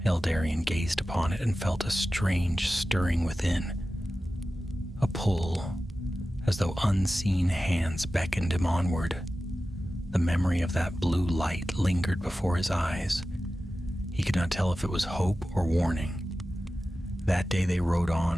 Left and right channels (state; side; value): normal; both; correlation 0.94